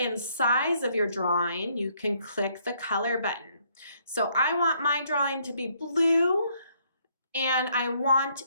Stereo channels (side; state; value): both; inverted; correlation -0.68